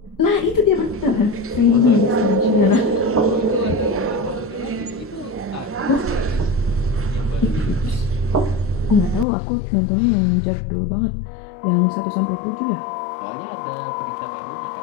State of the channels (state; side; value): drops out; right; at 9.2 s